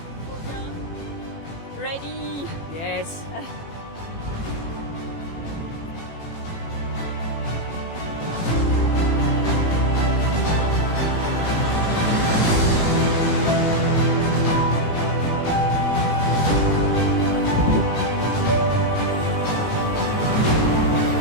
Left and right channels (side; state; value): right; late; 18 ms